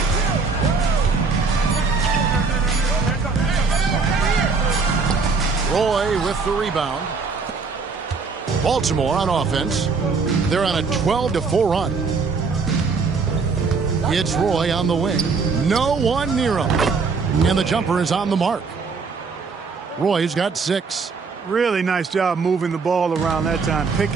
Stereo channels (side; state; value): left; quieter; 4.7 dB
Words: Roy with the rebound. Baltimore on offense. They're on a 12-4 run. It's Roy on the wing. No one near him. And the jumper is on the mark. Roy's got 6. Really nice job moving the ball around that time,